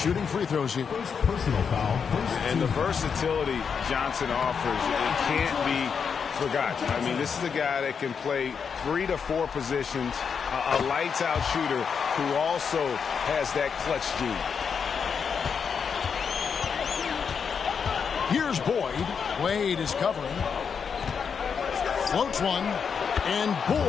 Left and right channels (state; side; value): quieter; right; 6.4 dB